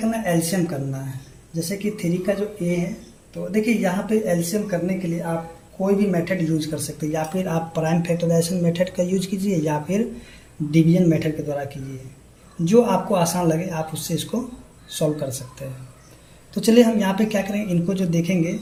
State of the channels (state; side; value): identical; both; correlation 1.00